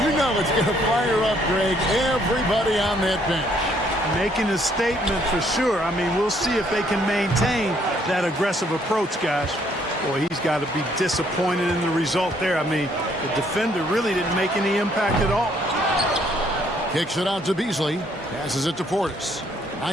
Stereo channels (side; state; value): both; normal; correlation 0.67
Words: you know it's going to fire up, Greg, everybody on that bench. Making a statement for sure. I mean, we'll see if they can maintain that aggressive approach, guys. Boy, he's got to be disappointed in the result there. I mean, the defender really didn't make any impact at all. Kicks it out to Beasley. Passes it to Portis.